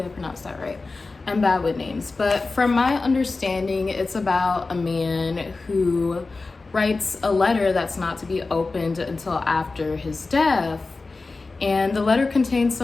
I pronounced that right. I'm bad with names, but from my understanding, it's about a man who writes a letter that's not to be opened until after his death. And the letter contains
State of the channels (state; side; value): quieter; right; 3.7 dB